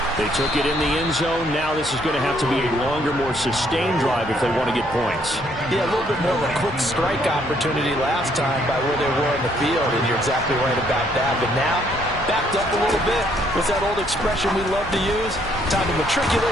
They took it in the end zone. Now this is going to have to be a longer, more sustained drive if they want to get points. Yeah, a little bit more of a quick strike opportunity last time by where they were in the field, and you're exactly right about that. But now, backed up a little bit. What's that old expression we love to use? Time to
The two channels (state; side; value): normal; both; correlation 0.68